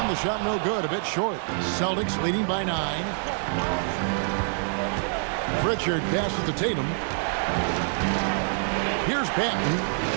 the shot no good, a bit short. Celtics leading by 9. Pritchard passes to Tatum. Here's Banton.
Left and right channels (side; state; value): left; silent; 60 dB below the other